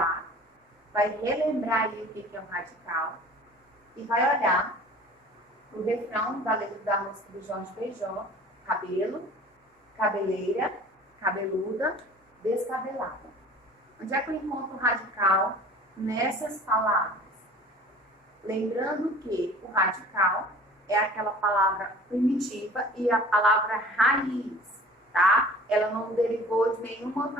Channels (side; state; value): both; normal; correlation 0.45